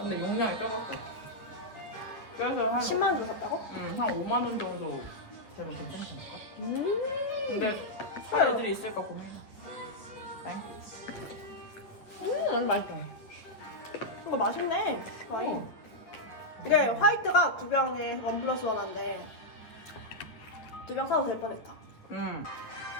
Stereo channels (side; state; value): right; late; 8.9 ms